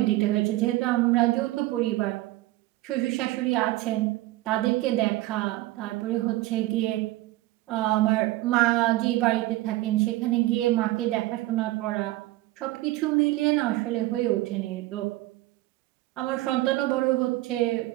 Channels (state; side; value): quieter; left; 17.8 dB